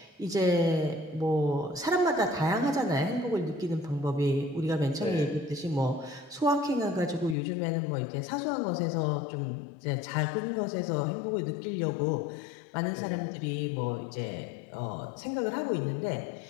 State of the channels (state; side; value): drops out; right; at 7.4 s